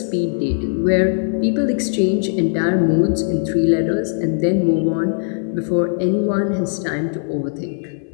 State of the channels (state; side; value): silent; right; digital silence